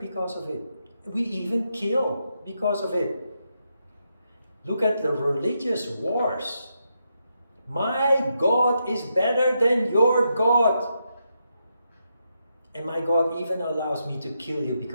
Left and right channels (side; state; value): both; inverted; correlation -0.83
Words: because of it. We even kill because of it. Look at the religious wars. My God is better than your God. And my God even allows me to kill you